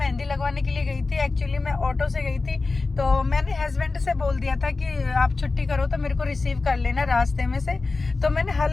लगवाने के लिए गई थी। एक्चुअली मैं ऑटो से गई थी, तो मैंने हस्बैंड से बोल दिया था कि आप छुट्टी करो तो मेरे को रिसीव कर लेना रास्ते में से। तो मैंने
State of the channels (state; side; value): quieter; right; 3.8 dB